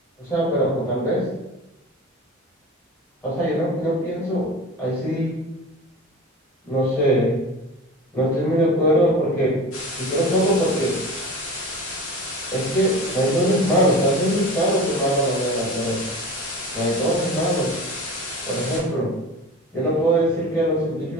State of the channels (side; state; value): both; normal; correlation 0.33